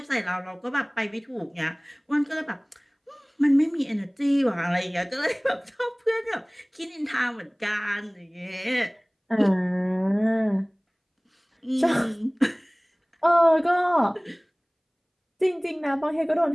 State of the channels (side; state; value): both; identical; correlation 1.00